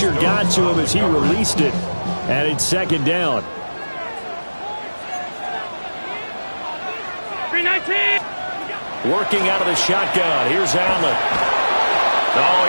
got to him as he released it. And it's second down. 319. Working out of the shotgun. Here's Allen. Oh,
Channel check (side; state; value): both; inverted; correlation -1.00